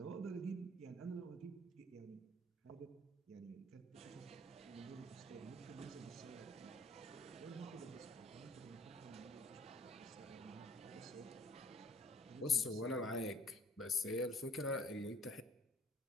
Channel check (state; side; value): normal; both; correlation 0.54